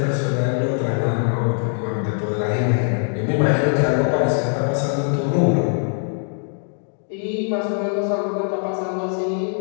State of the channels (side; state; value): right; silent; 56 dB below the other